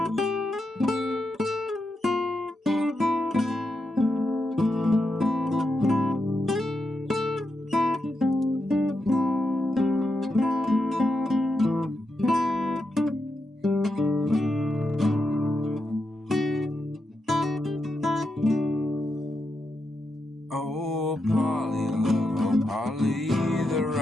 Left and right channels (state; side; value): normal; both; correlation 0.85